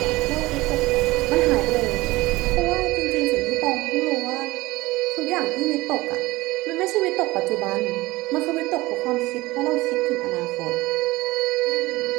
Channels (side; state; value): left; quieter; 19.9 dB